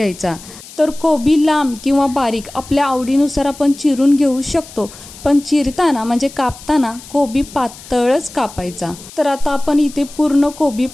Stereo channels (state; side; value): noise; left; hiss, 18 dB below the sound